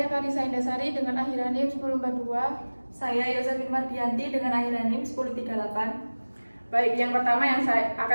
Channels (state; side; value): inverted; both; correlation -1.00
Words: Karisa Indasari dengan akhir NIM 1042. Saya Yosefin Mardianti dengan akhir NIM 1038. Baik, yang pertama yang